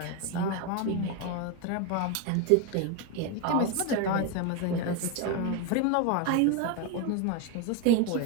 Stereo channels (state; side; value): different; both; correlation 0.02